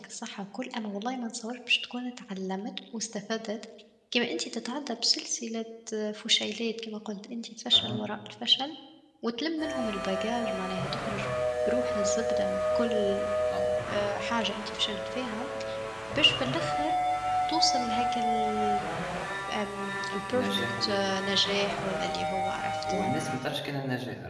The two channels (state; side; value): identical; both; correlation 1.00